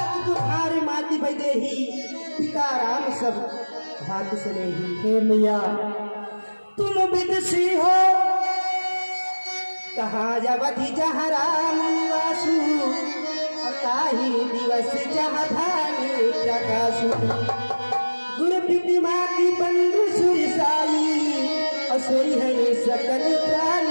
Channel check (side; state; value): both; inverted; correlation -1.00